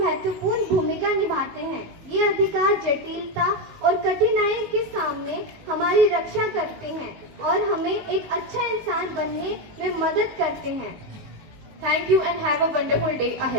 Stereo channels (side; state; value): left; late; 19 ms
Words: भूमिका निभाते हैं। ये अधिकार जटिलता और कठिनाई के सामने हमारी रक्षा करते हैं और हमें एक अच्छा इंसान बनने में मदद करते हैं। Thank you and have a wonderful day